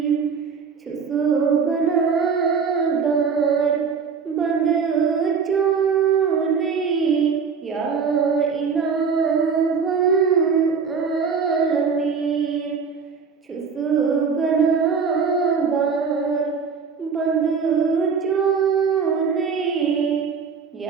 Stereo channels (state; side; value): quieter; left; 5.9 dB